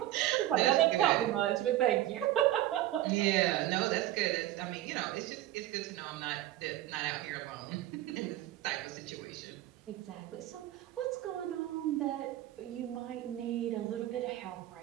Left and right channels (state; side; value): quieter; left; 14.3 dB